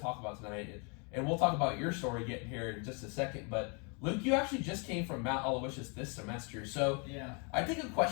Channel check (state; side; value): quieter; right; 35.1 dB